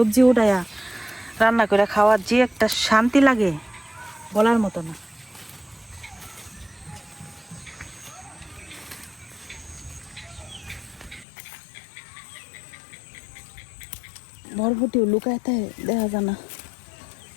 উঠাইয়া রান্না করে খাওয়ার যে একটা শান্তি লাগে বলার মতো না। বরবটিও লুকাইতে দেখা যায় না,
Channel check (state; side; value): drops out; right; at 11.2 s